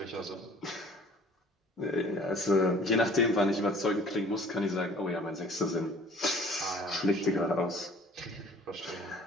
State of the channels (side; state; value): both; normal; correlation 0.52